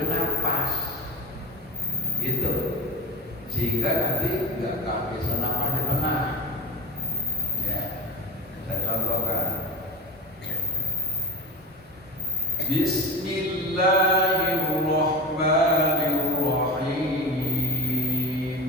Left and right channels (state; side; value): normal; both; correlation 0.23